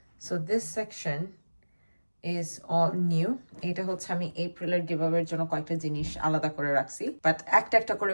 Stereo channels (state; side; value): inverted; both; correlation -1.00